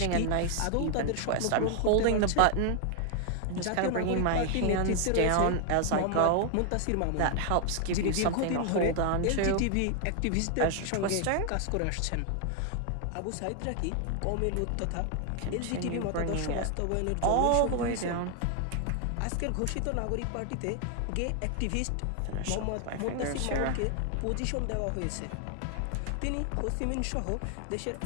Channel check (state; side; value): different; both; correlation 0.00